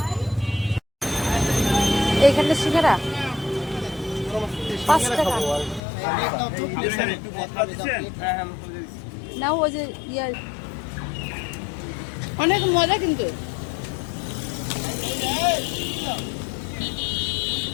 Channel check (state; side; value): drops out; right; at 5.8 s